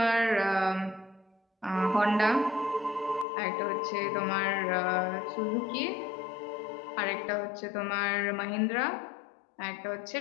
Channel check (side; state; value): right; drops out; at 3.2 s